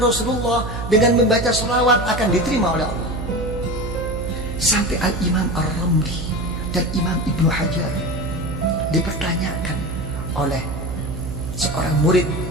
Rasulullah dengan membaca sholawat akan diterima oleh Allah. Sampai Al-Imam Ar-Ramli dan Imam Ibnu Hajar dipertanyakan oleh seorang murid,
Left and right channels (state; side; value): noise; right; hum, 6 dB below the sound